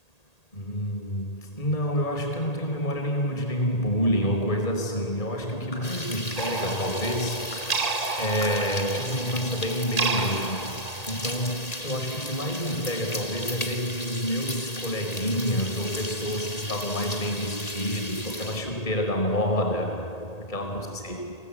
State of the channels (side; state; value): right; late; 1.8 ms